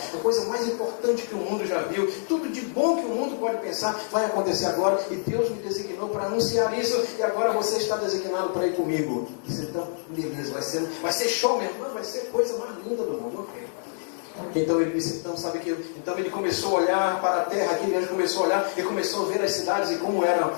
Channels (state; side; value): silent; right; 61 dB below the other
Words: A coisa mais importante que o mundo já viu, tudo de bom que o mundo pode pensar, vai acontecer agora, e Deus me designou para anunciar isso, e agora você está designado para ir comigo. Disse, então, beleza, vai ser show mesmo, vai ser coisa mais linda do mundo, ok. Então ele disse, então ele começou a olhar para a terra, aquele anjo começou a olhar e começou a ver as cidades e como era